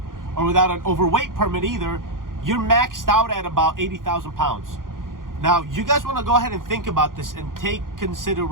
or without an overweight permit either, you're maxed out at about 80,000 pounds. Now you guys want to go ahead and think about this and take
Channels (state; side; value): late; left; 0.90 ms